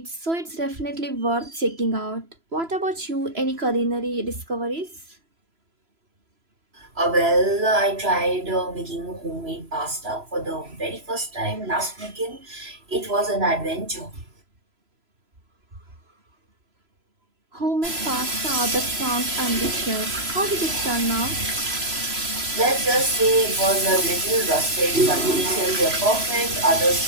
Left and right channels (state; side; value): late; left; 3.0 ms